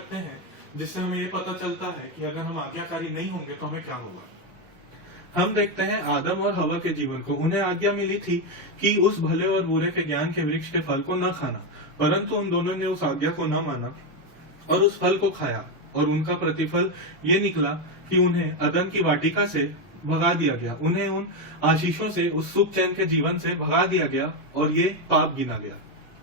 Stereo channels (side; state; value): both; normal; correlation 0.07